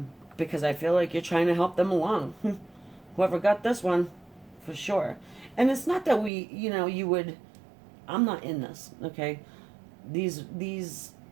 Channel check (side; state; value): left; drops out; at 6.3 s